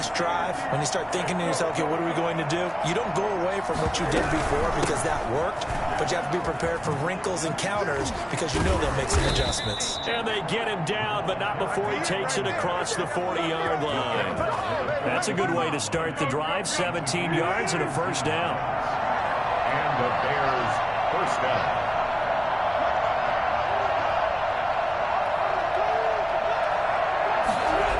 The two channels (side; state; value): both; identical; correlation 1.00